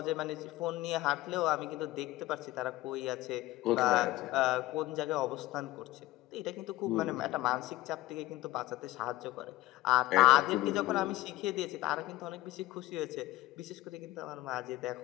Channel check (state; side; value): quieter; right; 17.3 dB